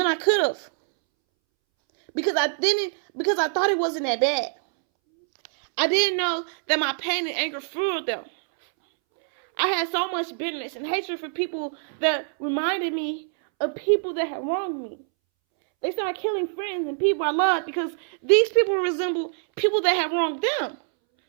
I could have. Because I thought it wasn't that bad. I didn't know that my pain and anger fueled them. I had so much bitterness and hatred for people that reminded me of people that had wronged me. They started killing friends and people I loved because these people resembled people that had wronged them.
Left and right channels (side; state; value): left; silent; 62 dB below the other